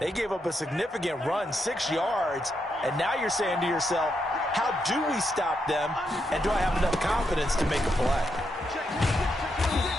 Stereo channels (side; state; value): both; normal; correlation 0.81